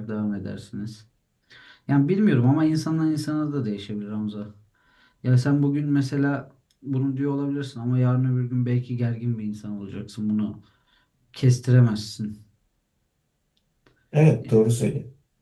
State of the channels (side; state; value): both; identical; correlation 1.00